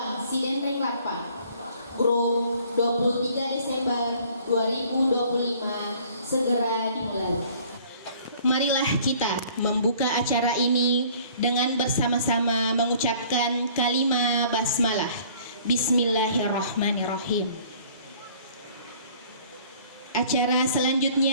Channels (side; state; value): both; inverted; correlation -0.54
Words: Sidendreng Rapang grup 23 Desember 2025 segera dimulai. Marilah kita membuka acara ini dengan bersama-sama mengucapkan kalimah basmalah. Bismillahirrahmanirrahim. Acara